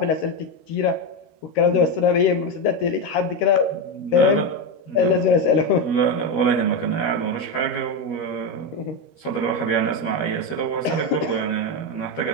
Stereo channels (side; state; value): right; late; 13 ms